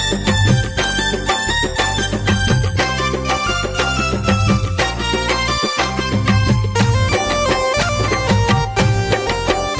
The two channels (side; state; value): both; identical; correlation 1.00